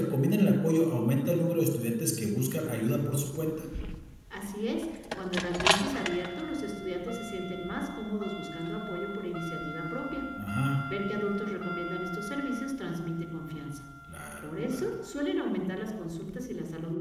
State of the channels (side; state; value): both; identical; correlation 1.00